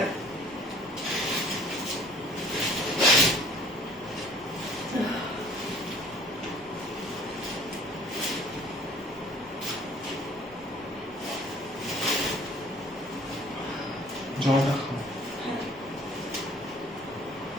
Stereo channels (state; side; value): normal; both; correlation 0.52